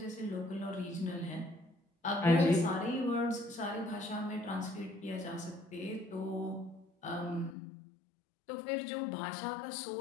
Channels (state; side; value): drops out; right; at 7.6 s